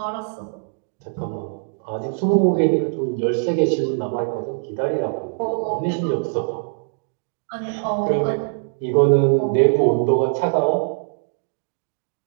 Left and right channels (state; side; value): silent; left; digital silence